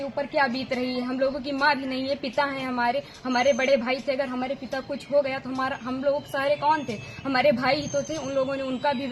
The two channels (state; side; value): identical; both; correlation 1.00